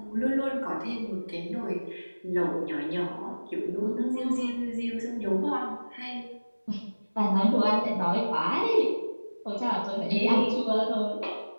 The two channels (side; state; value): both; inverted; correlation -1.00